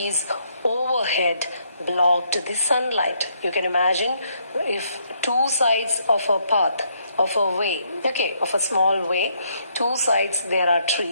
overhead blocked the sunlight. You can imagine if two sides of a path, of a way, okay, of a small way, two sides there are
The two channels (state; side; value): inverted; both; correlation -0.72